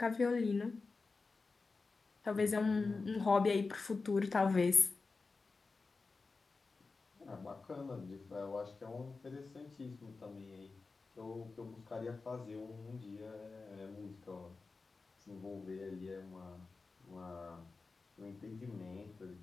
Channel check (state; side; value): quieter; right; 4.1 dB